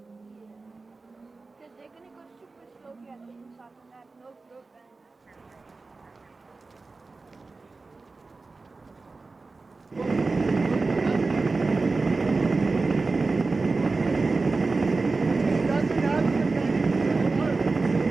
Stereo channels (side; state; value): left; quieter; 3.8 dB